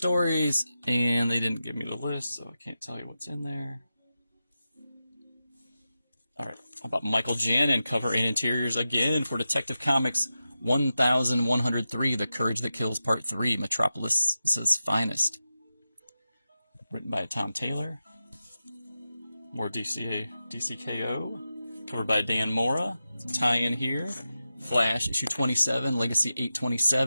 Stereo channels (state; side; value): inverted; both; correlation -0.91